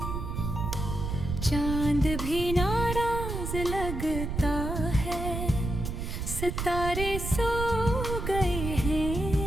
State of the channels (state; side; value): noise; right; rumble, 4 dB below the sound